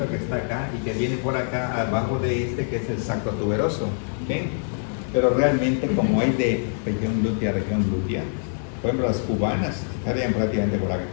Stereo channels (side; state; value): right; silent; 62 dB below the other